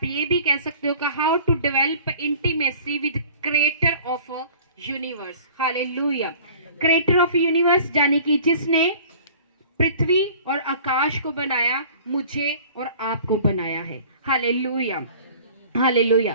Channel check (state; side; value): inverted; both; correlation -0.47